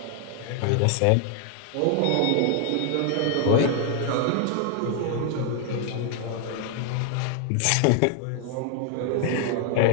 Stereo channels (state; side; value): different; both; correlation 0.00